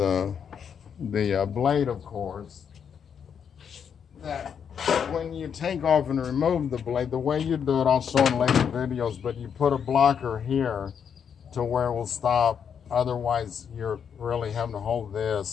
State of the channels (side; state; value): right; quieter; 7.5 dB